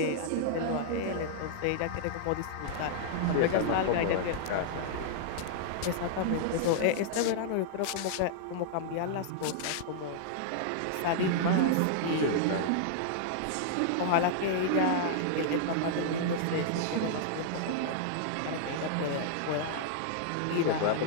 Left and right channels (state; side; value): different; both; correlation -0.01